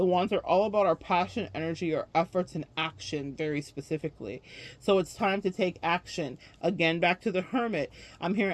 wands are all about our passion, energy, our efforts, and action very specifically. So it's time to take action. Again, back to the Hermit. I'm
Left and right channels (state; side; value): identical; both; correlation 1.00